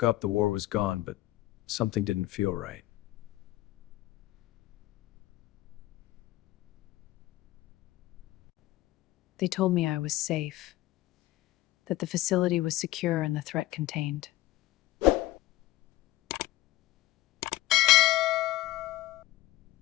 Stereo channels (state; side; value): quieter; right; 16.7 dB